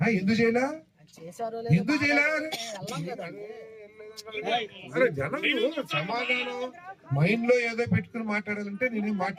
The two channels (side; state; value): both; identical; correlation 1.00